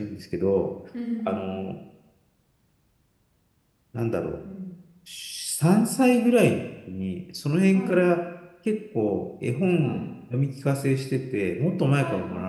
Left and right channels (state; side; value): identical; both; correlation 1.00